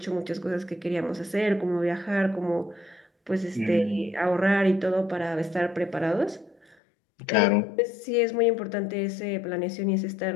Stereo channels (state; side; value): drops out; right; at 6.8 s